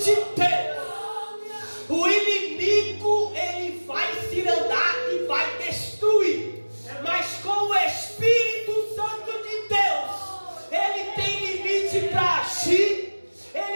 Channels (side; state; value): both; inverted; correlation -1.00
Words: Deus, o inimigo, ele